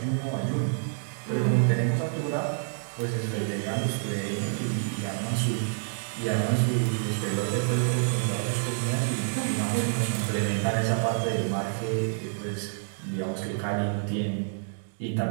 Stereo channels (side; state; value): left; silent; digital silence